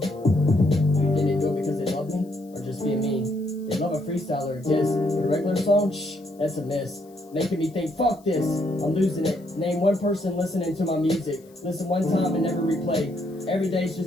You think they do it because they love me? Or just being mean? They love a freestyler or diss. But a regular song? Shh, that's a miss. Making me think, fuck this, I'm losing it. Name one person listening to my music. Listen one time and never replay. Every day's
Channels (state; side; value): noise; left; hiss, 30 dB below the sound